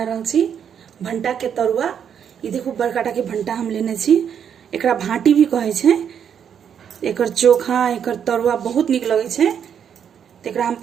रहल छी भंटा के तरुआ। ये देखो बड़काटा के भंटा हम लेने छी, एकरा भाटी भी कहे छे। एकर चोखा एकर तरुआ बहुत निक लगे छे। तो एकरा हम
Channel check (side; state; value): left; quieter; 8.2 dB